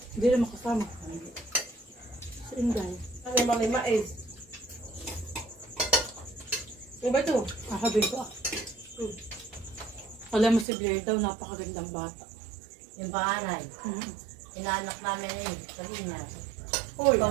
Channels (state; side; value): drops out; left; at 10.7 s